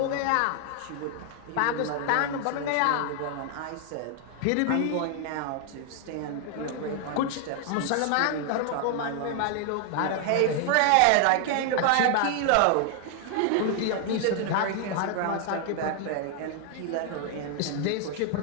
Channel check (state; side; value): different; both; correlation 0.00